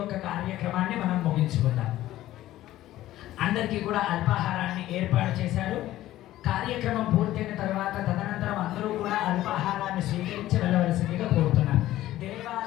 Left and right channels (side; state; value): right; quieter; 14.6 dB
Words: కార్యక్రమాన్ని మనం ముగించుకుందాం. అందరికీ కూడా అల్పాహారాన్ని ఏర్పాటు చేశారు. కార్యక్రమం పూర్తయిన తర్వాత తదనంతరం అందరూ కూడా అల్పాహారాన్ని స్వీకరించి వెళ్ళవలసిందిగా కోరుతున్నారు.